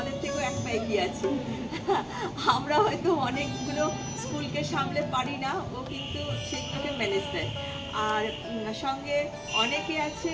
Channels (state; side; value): identical; both; correlation 1.00